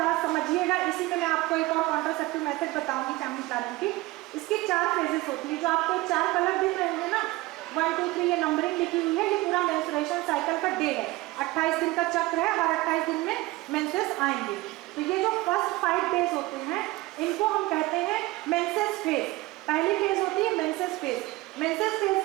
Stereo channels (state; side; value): quieter; left; 19.9 dB